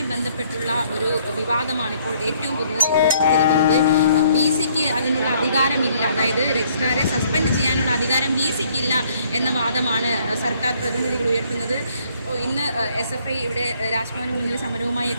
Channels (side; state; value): both; inverted; correlation -0.64